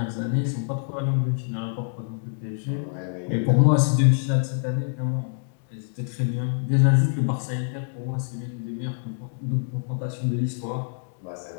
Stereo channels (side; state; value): right; silent; digital silence